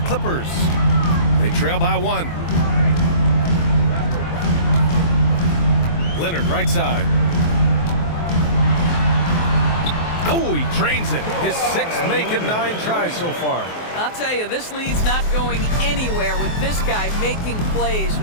They trail by 1. Leonard, right side. Oh, he drains it. His 6th make in 9 tries so far. I'll tell you, this lead's not going anywhere with this guy making plays.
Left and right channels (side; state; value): right; late; 23 ms